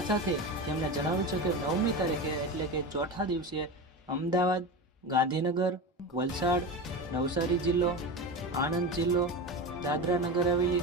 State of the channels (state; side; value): normal; both; correlation 0.24